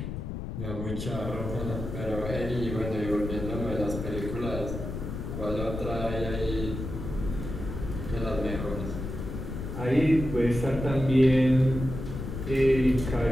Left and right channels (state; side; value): noise; left; rumble, 6 dB below the sound